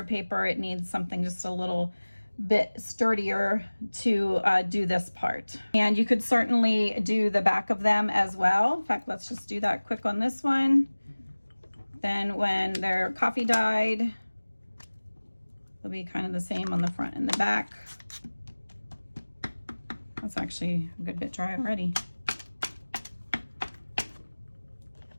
paper. It needs something just a little bit sturdier to do this part. And you could certainly do the back of them as well. In fact, let's just do that quick on this one. Then when they're coffee dyed, they'll be kind of the same on the front and the back. That's actually a good bit dry already.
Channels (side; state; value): both; inverted; correlation -1.00